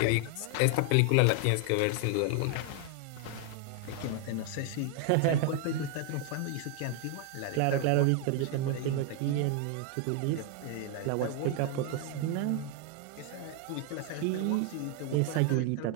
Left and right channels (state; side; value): different; both; correlation 0.01